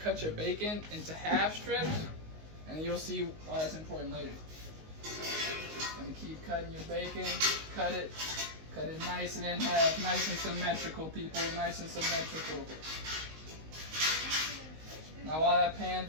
your bacon into half strips, and you'll see why that's important later. And keep cutting your bacon, cut it nice and in half, nice and symmetrical, people, nice and symmetrical. Now while that pan's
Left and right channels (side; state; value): left; late; 19 ms